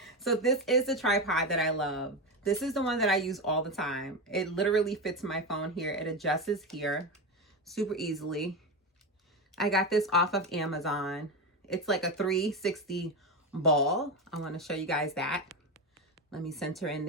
So this is the tripod that I love. This is the one that I use all the time. It literally fits my phone here. It adjusts here super easily. I got this off of Amazon. It's like a 360 ball. I want to show you guys that. Let me center in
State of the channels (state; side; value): normal; both; correlation 0.16